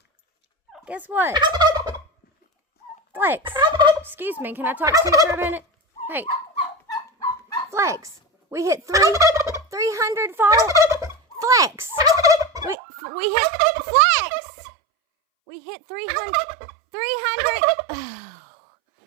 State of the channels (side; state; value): left; drops out; at 12.8 s